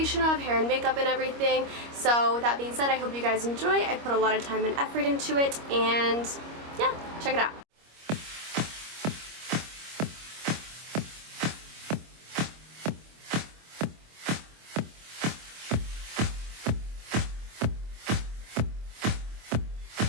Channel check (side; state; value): left; late; 25 ms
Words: of hair and makeup and everything. So with that being said, I hope you guys enjoy. I put a lot of time and effort into it, and yeah, check it out.